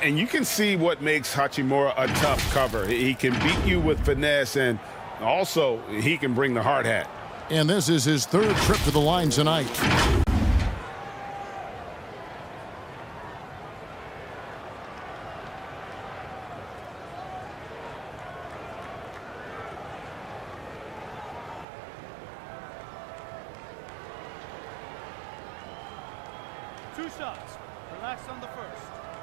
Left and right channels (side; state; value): left; drops out; at 21.7 s